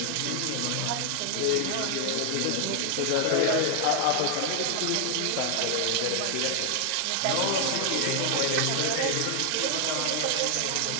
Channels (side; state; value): both; different; correlation 0.00